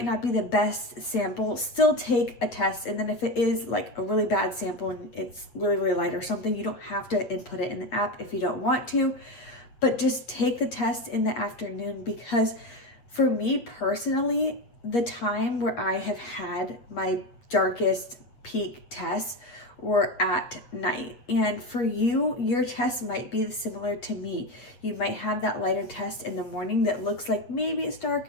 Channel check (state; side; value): late; right; 8.3 ms